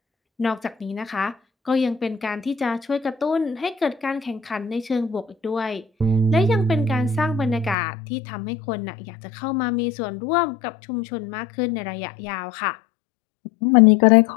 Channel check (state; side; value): drops out; right; at 7.8 s